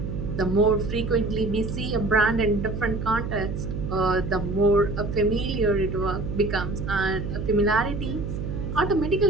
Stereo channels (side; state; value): right; noise; hum, 5 dB below the sound